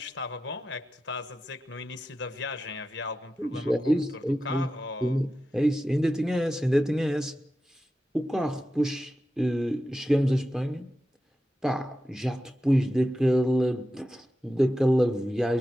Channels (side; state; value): both; normal; correlation 0.92